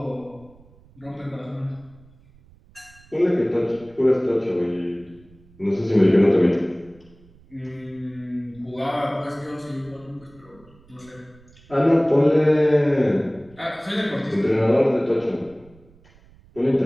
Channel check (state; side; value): noise; right; rumble, 27 dB below the sound